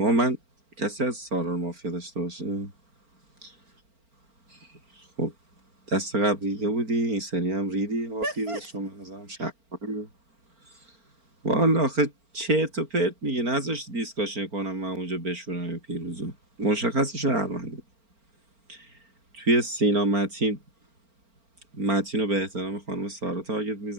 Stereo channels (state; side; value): late; left; 4.4 ms